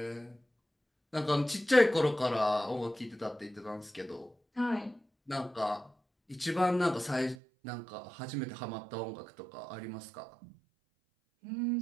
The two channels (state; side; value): drops out; left; at 7.4 s